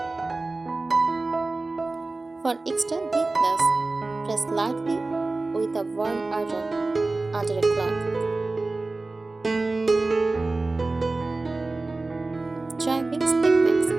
For extra neatness, press lightly with a warm iron under a cloth. Try mixed techniques,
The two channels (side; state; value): left; quieter; 3.3 dB